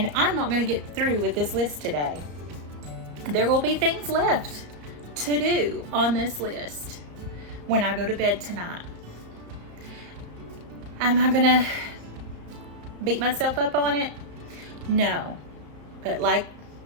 I'm not going to get through with this list today. There will be things left to do on this list when I go to bed tonight. Am I going to beat myself up on it? No. But like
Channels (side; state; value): left; late; 34 ms